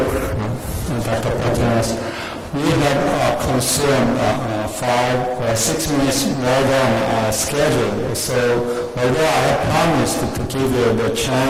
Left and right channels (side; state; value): both; identical; correlation 1.00